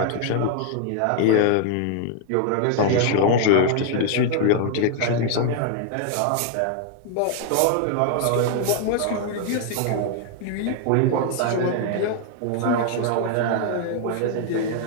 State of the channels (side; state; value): both; different; correlation 0.00